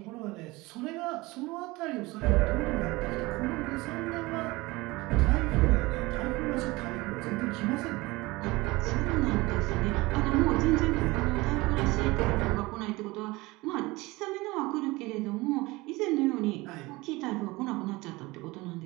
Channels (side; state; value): left; quieter; 21.8 dB